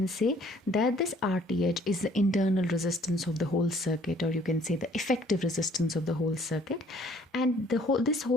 say that this RTH is the internal resistance of the whole circuit, or you can say the effective resistance of the whole circuit, and this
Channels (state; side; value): normal; both; correlation 0.59